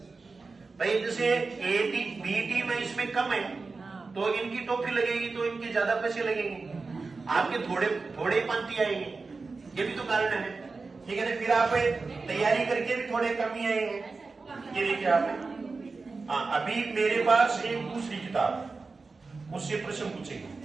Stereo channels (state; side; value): quieter; left; 4.1 dB